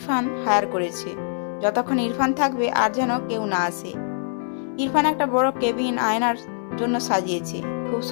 হায়ার করেছে। যতক্ষণ ইরফান থাকবে আর যেন কেউ না আসে। ইরফান একটা বড় কেবিন আয়নার জন্য সাজিয়েছে, খুব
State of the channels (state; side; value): silent; right; 63 dB below the other